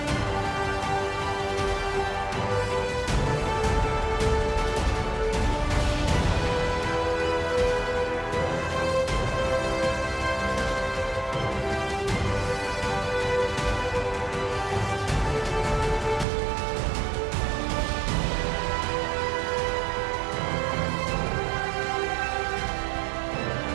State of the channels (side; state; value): left; drops out; at 16.2 s